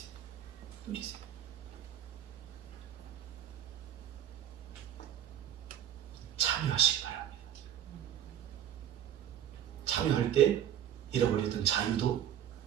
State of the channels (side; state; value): left; quieter; 10.4 dB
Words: 누리세요. 참여하시기 바랍니다. 참여할 때 잃어버렸던 자유도